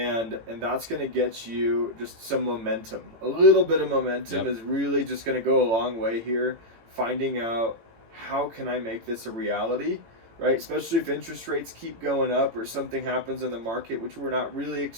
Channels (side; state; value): left; late; 18 ms